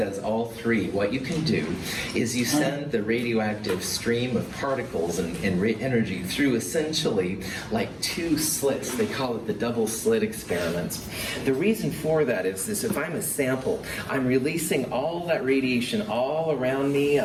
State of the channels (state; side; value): identical; both; correlation 1.00